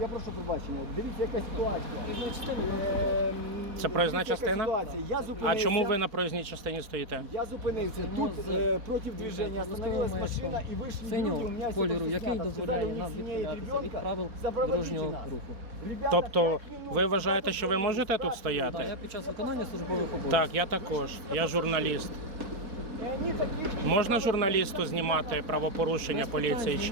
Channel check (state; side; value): late; left; 4.2 ms